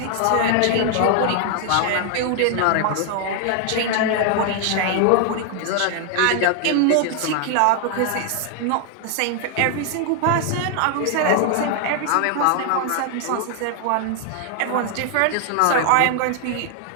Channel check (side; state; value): both; different; correlation 0.00